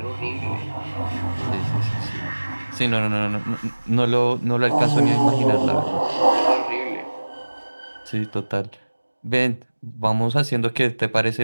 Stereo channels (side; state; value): both; inverted; correlation -1.00